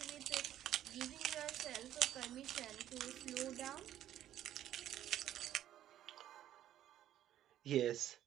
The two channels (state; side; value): quieter; left; 12.0 dB